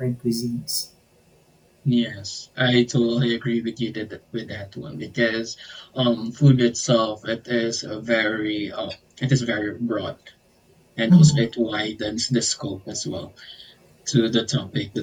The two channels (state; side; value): identical; both; correlation 1.00